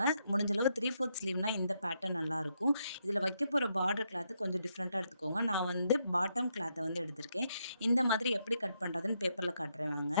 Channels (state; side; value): inverted; both; correlation -0.78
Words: முடிஞ்ச அளவு 3/4 ஸ்லீவ்னா இந்த பேட்டர்ன் நல்லாயிருக்கும். இதில வைக்க போற பார்டர் கிளாத் கொஞ்சம் டிஃப்ரெண்ட்டா எடுத்துக்கோங்க. நான் வந்து பாட்டம் கிளாத்த வந்து எடுத்திருக்கேன். இந்த மாதிரி எப்படி கட் பண்றதுன்னு பேப்பர்ல காட்டுறேன்